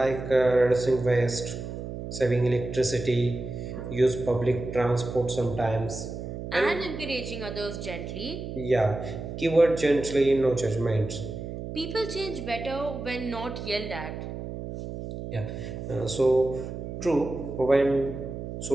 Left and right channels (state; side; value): noise; right; hum, 8 dB below the sound